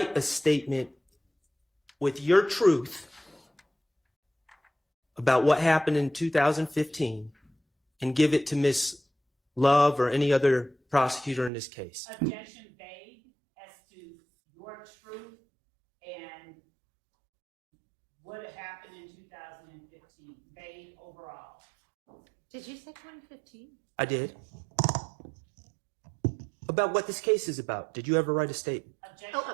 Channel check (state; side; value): drops out; left; at 11.5 s